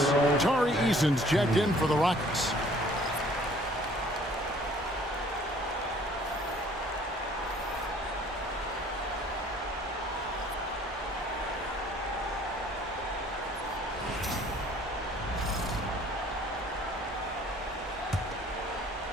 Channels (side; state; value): both; normal; correlation 0.56